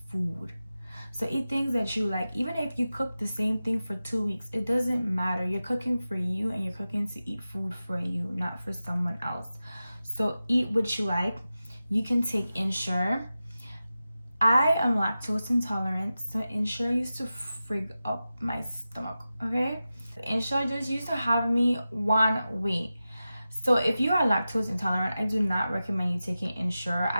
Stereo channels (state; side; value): inverted; both; correlation -0.94